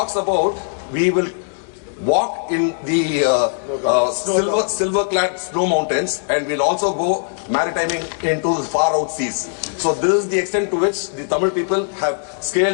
about we will walk in the silver-clad snow mountains, and we'll also go maritiming into the far out seas. So this is the extent to which the Tamil people have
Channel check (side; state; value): right; silent; digital silence